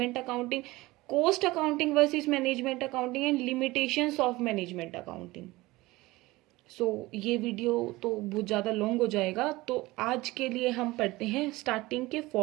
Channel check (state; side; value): quieter; left; 20.1 dB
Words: accounting, cost accounting versus management accounting, and limitations of management accounting. ये video तो बहुत ज़्यादा long हो जाएगा, तो आज के लिए हम पढ़ते हैं स्टार्टिंग के